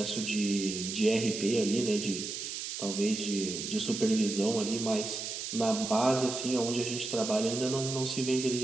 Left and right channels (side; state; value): right; noise; hiss, 5 dB below the sound